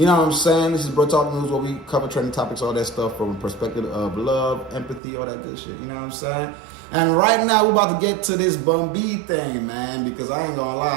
know what I'm saying? This is Bruh Talk News where we cover trending topics, all that stuff from a perspective of love, empathy, all that good shit. You know what I'm saying? And right now, we're about to get to this Bun B thing, man, because I ain't gonna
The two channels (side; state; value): left; drops out; at 5.0 s